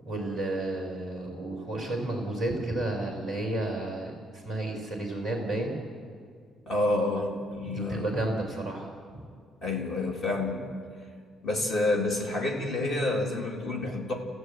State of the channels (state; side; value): normal; both; correlation 0.67